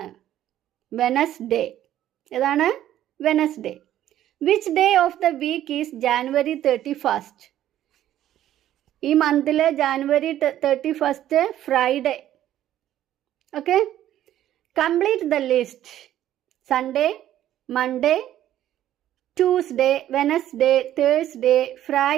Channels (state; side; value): quieter; left; 12.3 dB